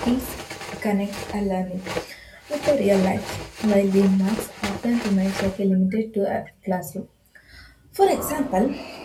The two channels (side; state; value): both; identical; correlation 1.00